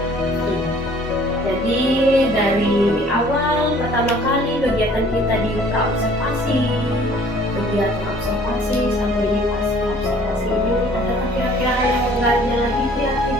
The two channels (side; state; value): both; normal; correlation 0.54